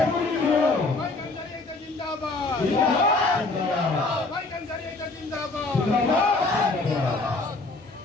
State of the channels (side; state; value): right; quieter; 3.3 dB